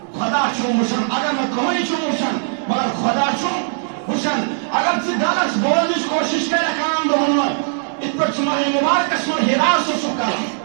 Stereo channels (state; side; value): silent; left; 66 dB below the other